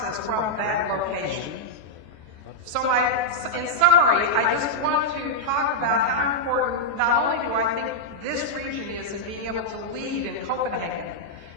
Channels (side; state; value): left; late; 14 ms